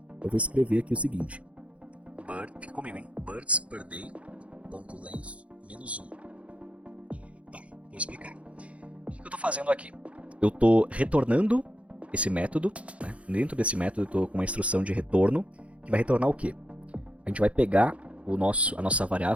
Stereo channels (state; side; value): late; left; 0.063 ms